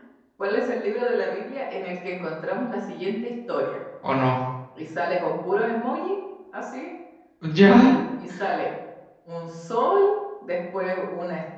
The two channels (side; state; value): both; identical; correlation 1.00